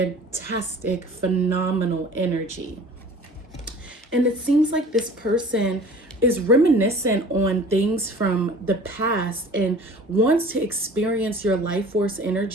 phenomenal energy. And it seems like this person is reminiscent on things from the past and wants to experience your life force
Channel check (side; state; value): both; normal; correlation 0.45